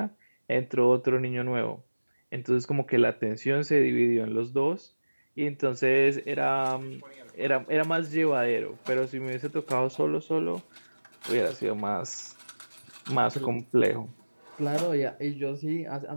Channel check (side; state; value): both; inverted; correlation -1.00